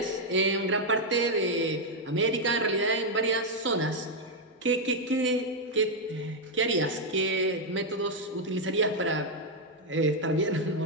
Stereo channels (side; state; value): both; normal; correlation 0.00